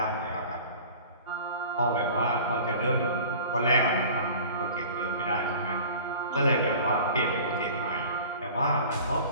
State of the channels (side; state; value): both; inverted; correlation -0.42